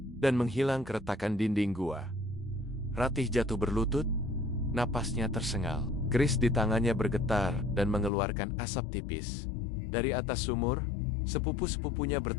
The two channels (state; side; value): drops out; right; at 8.1 s